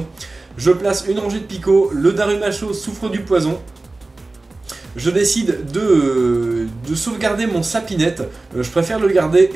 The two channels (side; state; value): left; quieter; 3.2 dB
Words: Je place une rangée de Pico, le Darumacho souffre du poison. Je décide de sauvegarder mon Sapinette, je préfère le garder